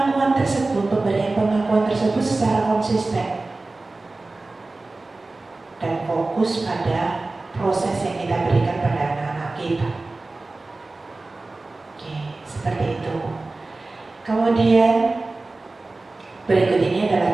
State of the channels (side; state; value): left; quieter; 3.3 dB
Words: tersebut, pemberian pengakuan tersebut secara konsisten dan fokus pada proses yang kita berikan pada anak-anak kita. Oke, seperti itu. Kemudian berikut ini adalah